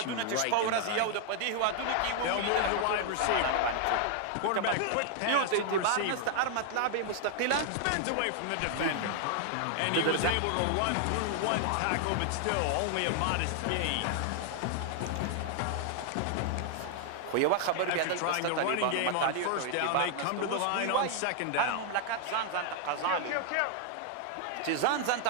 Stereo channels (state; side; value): different; both; correlation 0.00